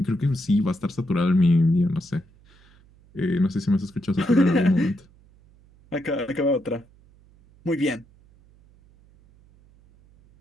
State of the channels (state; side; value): noise; right; hum, 29 dB below the sound